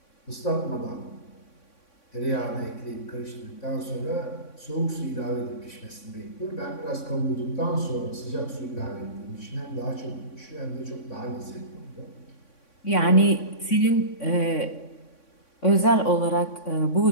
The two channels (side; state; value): right; late; 3.6 ms